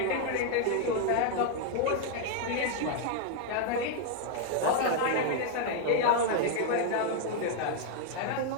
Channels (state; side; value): different; both; correlation 0.01